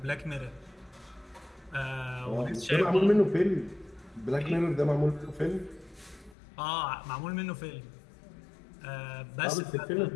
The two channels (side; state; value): right; drops out; at 6.4 s